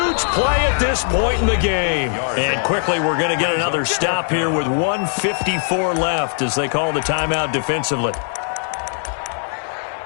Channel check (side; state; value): right; silent; 58 dB below the other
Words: play at this point in the game. And quickly, we're going to get another stop here with 1:54 left as they call the timeout defensively.